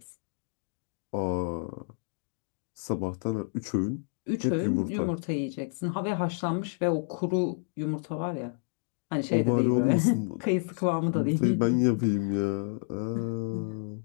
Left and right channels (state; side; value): silent; right; digital silence